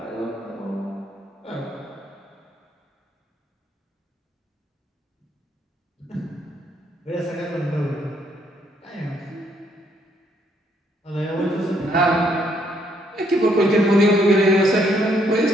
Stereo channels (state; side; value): normal; both; correlation 0.70